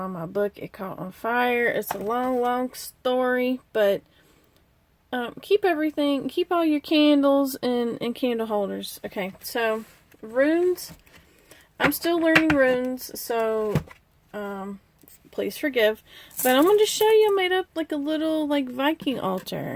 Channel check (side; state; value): both; identical; correlation 1.00